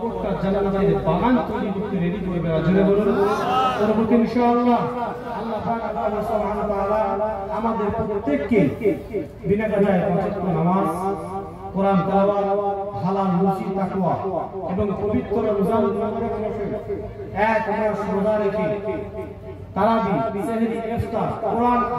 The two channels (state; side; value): identical; both; correlation 1.00